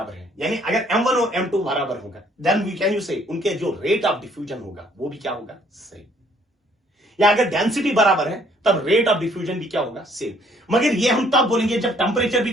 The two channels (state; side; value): normal; both; correlation 0.63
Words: है, यानी अगर M1 और M2 बराबर होगा देन वी कैन यू से उनके जो रेट ऑफ डिफ्यूजन होगा वो भी क्या होगा, सेम। या अगर डेंसिटी बराबर है तब रेट ऑफ डिफ्यूजन भी क्या होगा, सेम। मगर ये हम तब बोलेंगे जब टेंपरेचर भी